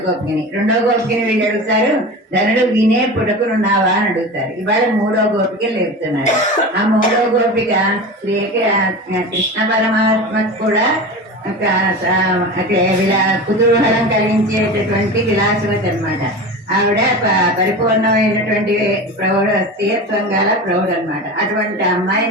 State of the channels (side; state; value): both; normal; correlation 0.29